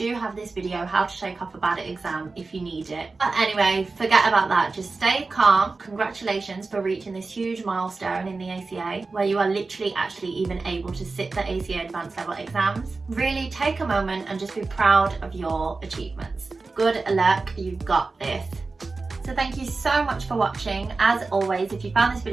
have this video, how to take off a bad exam, if you need it. But anyway, forget about that. Just stay calm. Congratulations for reaching this huge milestone in the ACA, where you are literally actually even able to sit the ACA Advanced Level exams. Really take a moment and just be proud of your achievements. Good luck, you've got this. So thank you so much for watching. As always, if you found this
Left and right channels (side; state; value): left; quieter; 3.9 dB